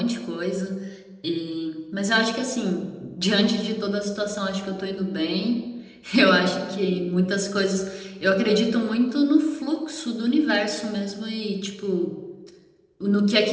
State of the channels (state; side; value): identical; both; correlation 1.00